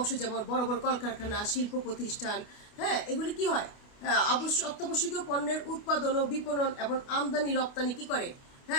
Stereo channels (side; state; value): right; late; 29 ms